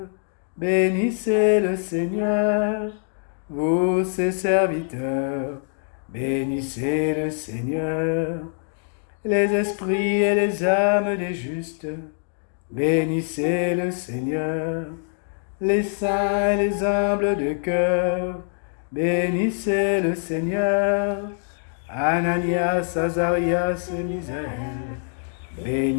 bénissez le Seigneur. Vous, ses serviteurs, bénissez le Seigneur. Les esprits et les âmes des justes, bénissez le Seigneur. Les saints et les humbles de cœur, bénissez le Seigneur. Ananias, Azarias, Misaël,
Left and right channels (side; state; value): right; silent; 61 dB below the other